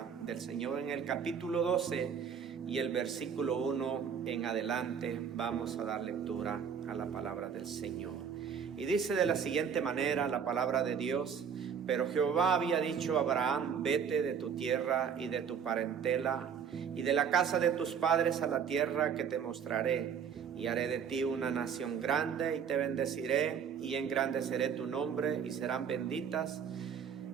del Señor en el capítulo 12 y el versículo 1 en adelante. Vamos a dar lectura a la palabra del Señor. Y dice de la siguiente manera la palabra de Dios: pero Jehová había dicho a Abraham: vete de tu tierra y de tu parentela y de la casa de tus padres a la tierra que te mostraré, y haré de ti una nación grande, y te bendeciré, y engrandeceré tu nombre, y serán benditas,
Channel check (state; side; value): quieter; left; 7.1 dB